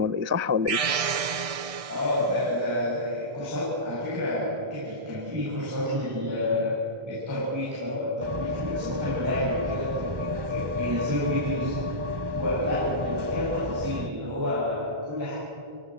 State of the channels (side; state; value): left; late; 1.6 ms